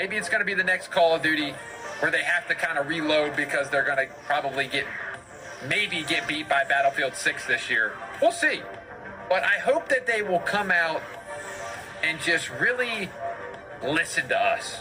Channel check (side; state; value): both; identical; correlation 1.00